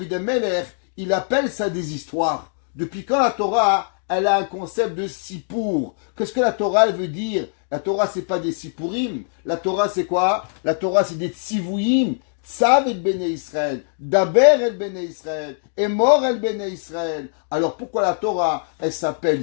Amelech, il appelle ça des histoires? Depuis quand la Torah, elle a un concept de sipour? Qu'est-ce que la Torah, elle veut dire? La Torah, c'est pas des sipurim. La Torah, c'est quoi? La Torah, c'est des tzivuyim. Tzav et Bene Israël. Daber et Bene Israël. Et mort et Bene Israël. Alors, pourquoi la Torah, elle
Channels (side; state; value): right; silent; digital silence